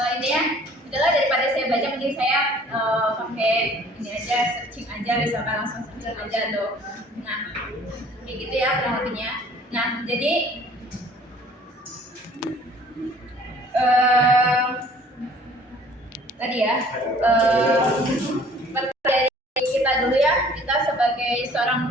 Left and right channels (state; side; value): normal; both; correlation 0.53